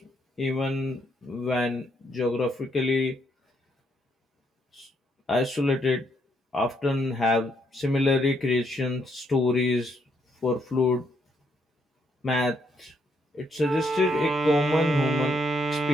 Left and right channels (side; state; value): both; normal; correlation 0.74